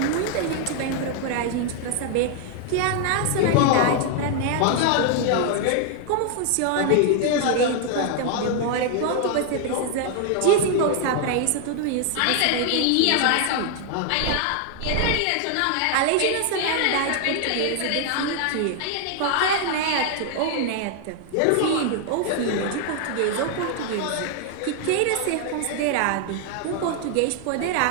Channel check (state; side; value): different; both; correlation 0.00